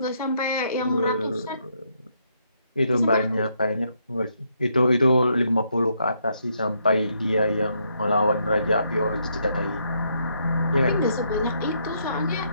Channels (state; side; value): inverted; both; correlation -0.75